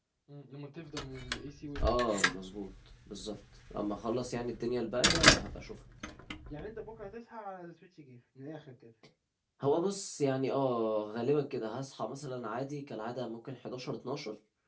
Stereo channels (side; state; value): both; identical; correlation 1.00